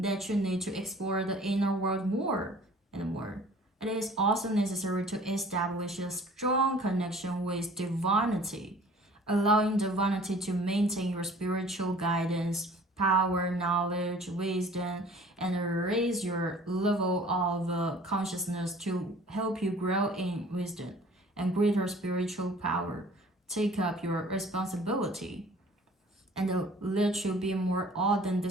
you need to explore the inner world more and more. It is also necessary to establish a strong connection with divinity, allowing divinity to maintain your spiritual guidance, power, knowledge, wisdom, and raise your level of consciousness to help you grow in wisdom and greater spiritual power. Take up your responsibility and let you be more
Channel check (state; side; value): normal; both; correlation 0.50